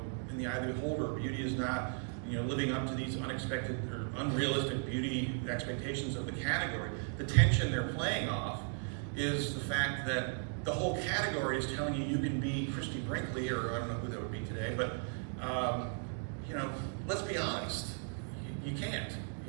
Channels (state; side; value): silent; left; 54 dB below the other